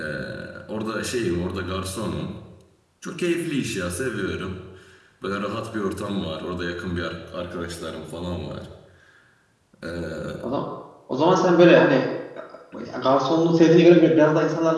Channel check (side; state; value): both; identical; correlation 1.00